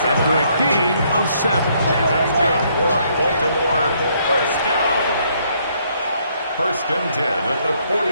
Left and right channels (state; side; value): inverted; both; correlation -0.69